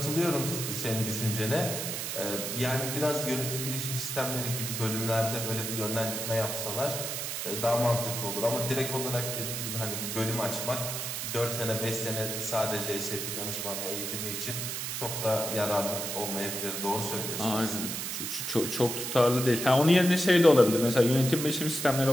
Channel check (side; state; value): right; noise; hiss, 4 dB below the sound